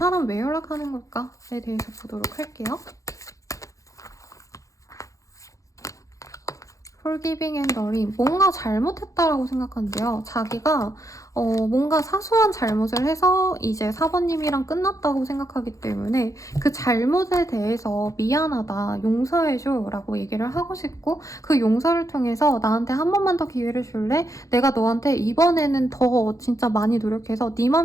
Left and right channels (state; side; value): late; right; 0.16 ms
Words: 왜 연락하는 걸까에 대해서 보도록 할게요. forgiving and loving. 뭔가 잘못했다라고 생각한대요. 자기가 뭔가 사소한 잘못을 해서 이제 4번님이랑 끝났다고 생각하기 때문에 그 잘못에 대해서 미안하다, 용서해줘 라고 얘기를 하고 싶고, 그 용서를 통해서 나한테 한 번만 더 기회를 줄래? 내가 너한테 이번에는 더 진짜 많이 노력해서 네